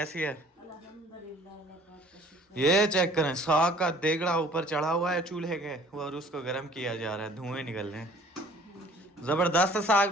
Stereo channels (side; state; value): both; normal; correlation 0.53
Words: है? ये चेक करें, साग का देगड़ा ऊपर चढ़ा हुआ है चूल्हे के, और उसको गर्म किया जा रहा है, धुएं निकल रहे हैं। जबरदस्त साग